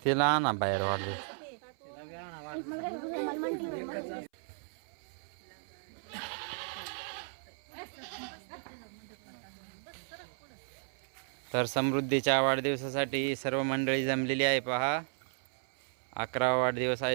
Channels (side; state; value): left; silent; 55 dB below the other